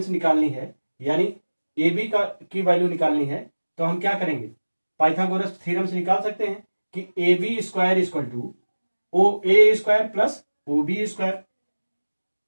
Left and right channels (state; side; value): inverted; both; correlation -1.00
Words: निकालनी है, यानी ए बी की वैल्यू निकालनी है, तो हम क्या करेंगे, पाइथागोरस थ्योरम से निकाल सकते हैं कि A B square equal to O A square plus O B square.